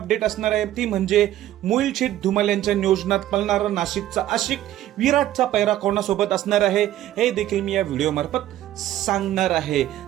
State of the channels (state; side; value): quieter; left; 13.3 dB